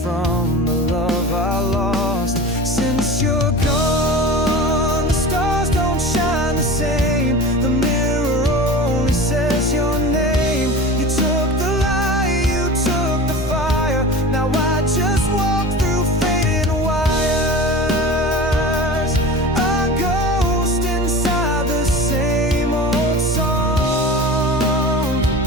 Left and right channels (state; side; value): normal; both; correlation 0.34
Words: from the love I lost. Since you're gone, the stars don't shine the same. The mirror only says your name. You took the light, you took the fire. Now I just walk through faded wires, a ghost inside the same old song